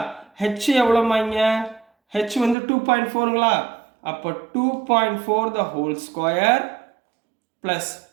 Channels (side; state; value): left; drops out; at 2.6 s